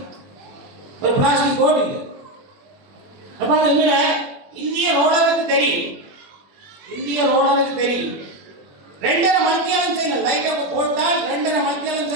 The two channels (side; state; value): left; late; 21 ms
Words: ஒரு பிளாஸ்டிக் போட்டு இல்லை. அப்போ அதை விட இந்திய ரோடருக்கு தெரியும், 2.5 மணித்தியாலம் செய்யணும். லைட்டை போட்டால் 2.5 மணித்தியாலம்